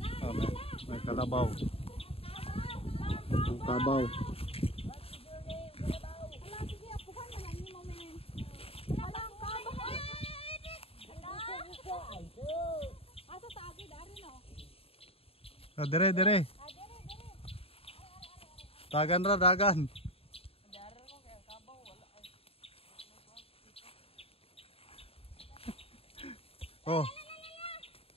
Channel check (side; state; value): right; late; 0.28 ms